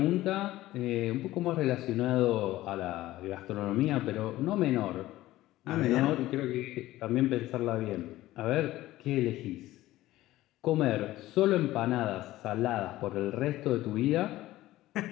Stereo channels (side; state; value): right; quieter; 16.1 dB